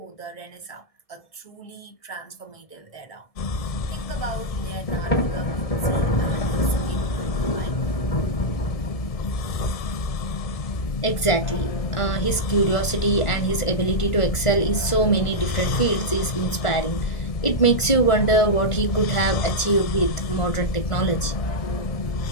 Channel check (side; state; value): right; late; 1.7 ms